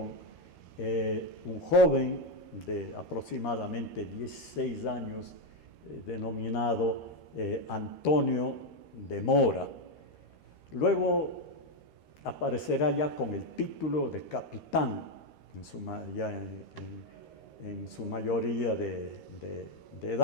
un joven de aproximadamente 16 años denominado Antonio de Mora. Luego aparecerá ya con el título de capitán en su mayoría de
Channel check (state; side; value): late; right; 13 ms